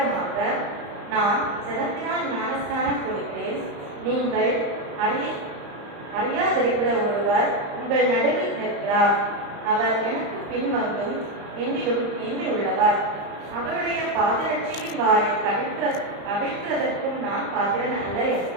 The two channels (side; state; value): left; late; 35 ms